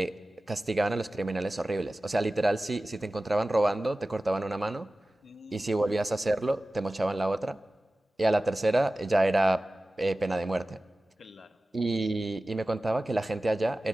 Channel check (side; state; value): both; normal; correlation 0.96